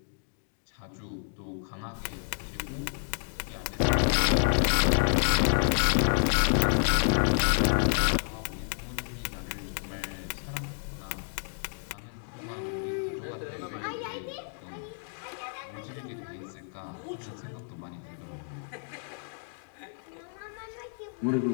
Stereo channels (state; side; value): silent; right; 58 dB below the other